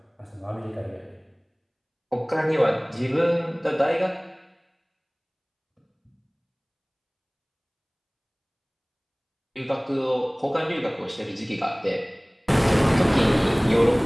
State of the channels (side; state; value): both; identical; correlation 1.00